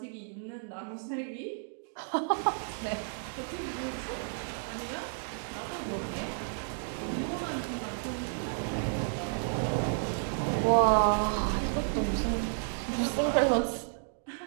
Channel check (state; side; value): silent; left; digital silence